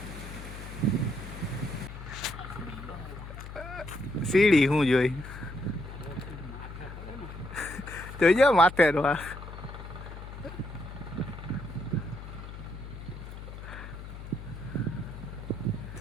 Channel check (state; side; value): noise; left; hum, 11 dB below the sound